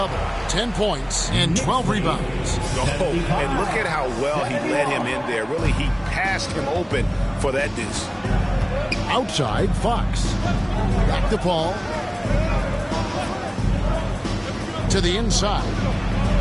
10 points and 12 rebounds. Oh, and look at how well he led him in there. Really, he passed him open for that deuce. Outside, Fox. Back to Paul. To the inside.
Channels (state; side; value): identical; both; correlation 1.00